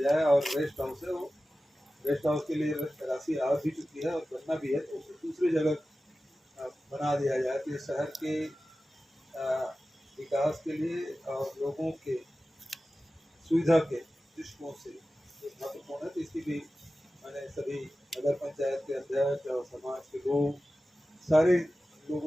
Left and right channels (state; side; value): normal; both; correlation 0.95